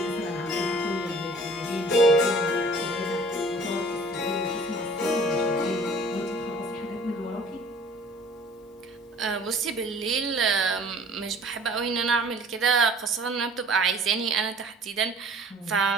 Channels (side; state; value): both; normal; correlation 0.50